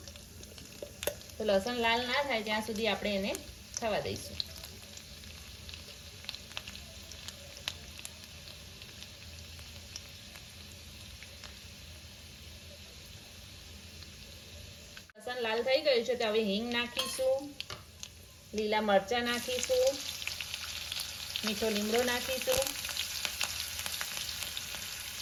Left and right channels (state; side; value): identical; both; correlation 1.00